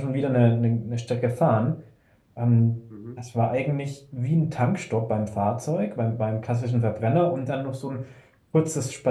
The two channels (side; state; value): both; identical; correlation 1.00